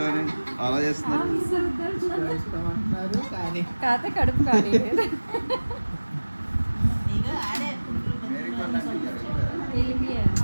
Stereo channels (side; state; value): both; inverted; correlation -1.00